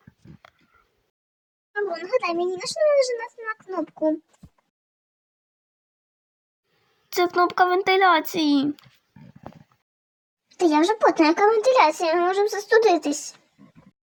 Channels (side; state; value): both; identical; correlation 1.00